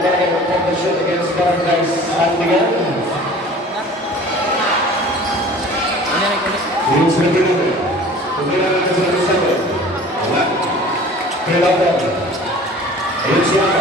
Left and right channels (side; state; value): both; normal; correlation 0.45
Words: competition against Barangay Sandigan. Yung sa natin. Tumira natin sa natin. Wala. Kailangan. Ayun si